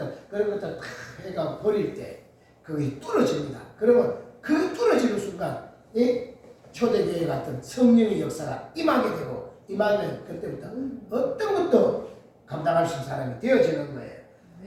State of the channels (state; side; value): identical; both; correlation 1.00